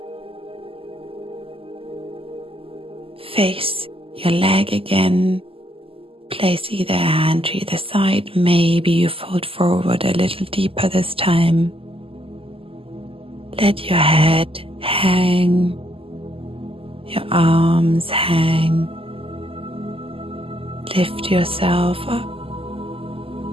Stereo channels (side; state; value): left; late; 0.27 ms